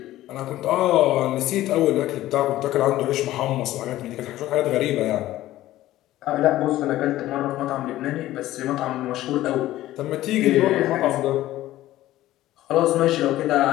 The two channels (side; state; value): right; quieter; 15.0 dB